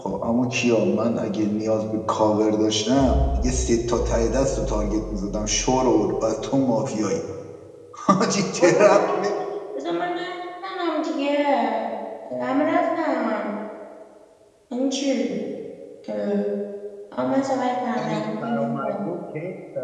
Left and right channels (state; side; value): identical; both; correlation 1.00